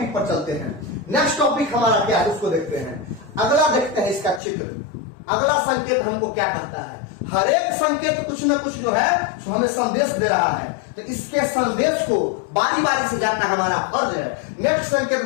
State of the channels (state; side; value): drops out; right; at 4.4 s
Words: पर चलते हैं। नेक्स्ट टॉपिक हमारा क्या है उसको देखते हैं। अगला देखते हैं इसका चित्र। अगला संकेत हमको क्या कहता है, हर एक संकेत कुछ न कुछ जो है जो हमें संदेश दे रहा है, तो इसके संदेश को बारी बारी से जानना हमारा फर्ज है। नेक्स्ट संकेत